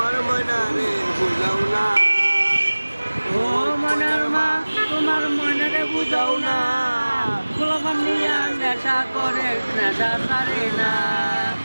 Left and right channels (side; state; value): both; inverted; correlation -1.00